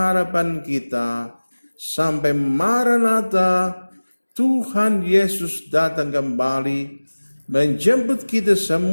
kita sampai Maranatha, Tuhan Yesus datang kembali menjemput kita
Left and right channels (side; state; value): both; inverted; correlation -1.00